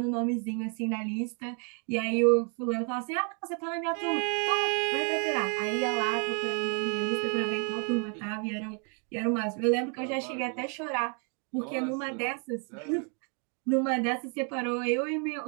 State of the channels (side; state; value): left; quieter; 39.2 dB